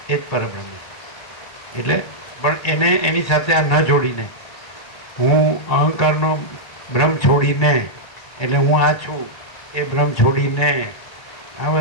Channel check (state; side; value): late; right; 1.8 ms